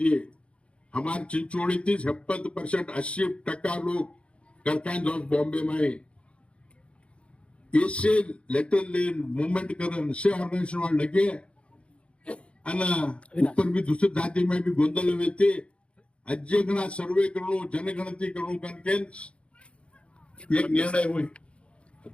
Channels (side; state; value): right; late; 0.059 ms